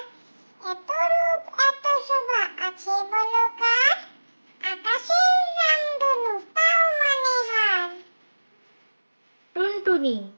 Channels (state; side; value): inverted; both; correlation -1.00